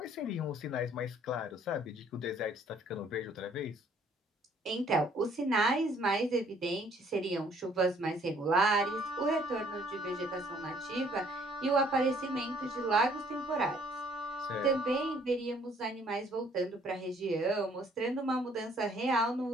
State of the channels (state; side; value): normal; both; correlation 0.61